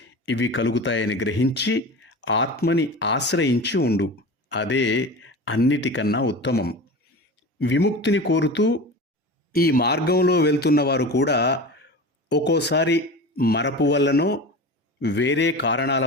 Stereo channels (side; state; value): both; normal; correlation 0.31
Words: ఇవి కలుగుతాయని గ్రహించి ఆత్మని ఆశ్రయించి ఉండు. అదే అన్నిటికన్నా ఉత్తమం. విముక్తిని కోరుతూ ఈ మార్గంలో వెళ్తున్నవారు కూడా ఒక్కోసారి మరపు వల్లనో వేరే కారణాల